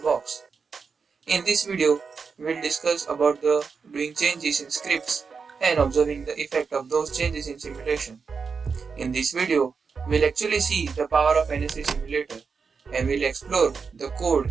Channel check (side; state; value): left; quieter; 5.4 dB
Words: In this video, we'll discuss about the doing changes in scripts and observing the effect of those changes in simulation. In this video, we'll actually see the power of NS3 simulator and we'll explore the code